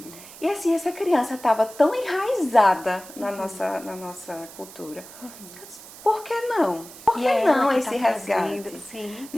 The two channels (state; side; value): noise; right; hiss, 17 dB below the sound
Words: E assim, essa criança estava tão enraizada na nossa cultura. Eu disse, por que não? Por que não esse resgate?